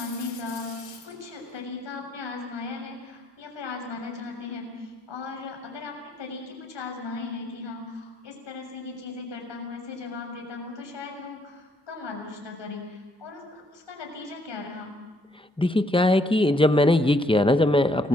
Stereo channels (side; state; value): both; normal; correlation 0.70